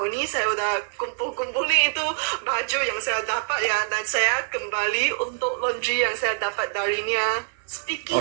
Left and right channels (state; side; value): silent; left; 62 dB below the other